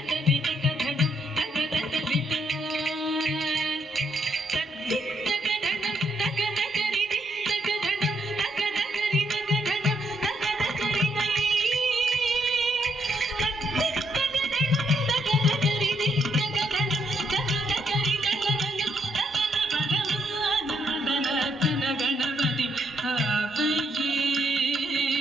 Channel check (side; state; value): both; normal; correlation 0.75